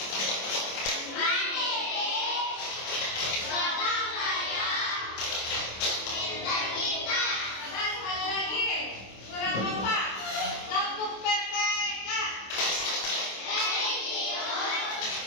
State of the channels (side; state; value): right; late; 26 ms